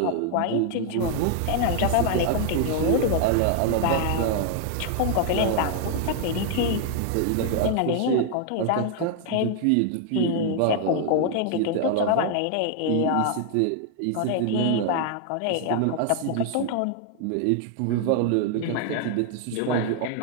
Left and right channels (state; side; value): different; both; correlation 0.00